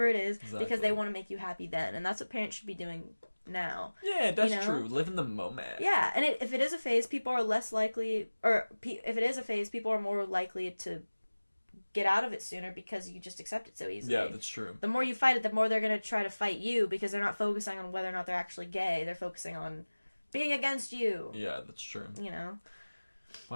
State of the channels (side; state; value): both; inverted; correlation -1.00